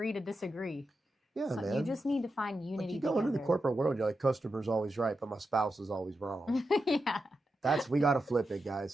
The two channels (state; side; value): normal; both; correlation 0.88